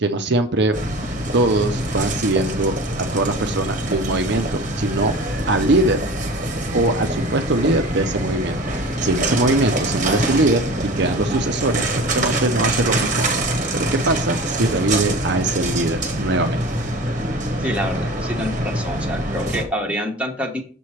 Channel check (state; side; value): normal; both; correlation 0.36